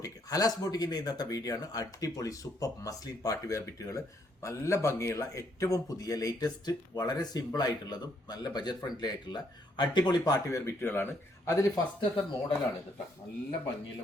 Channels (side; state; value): both; normal; correlation 0.71